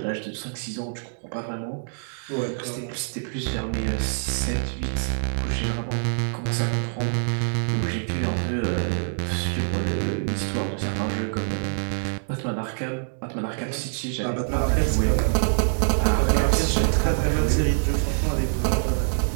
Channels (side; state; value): left; silent; digital silence